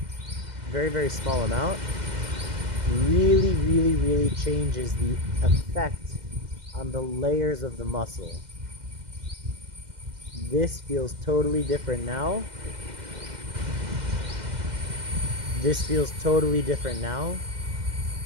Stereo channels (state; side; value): late; left; 2.0 ms